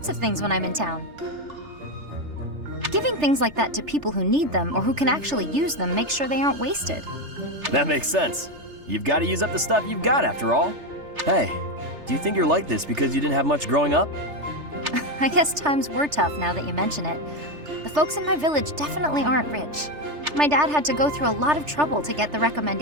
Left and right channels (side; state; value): left; late; 3.3 ms